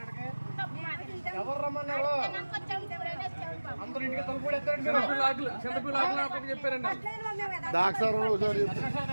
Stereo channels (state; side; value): inverted; both; correlation -1.00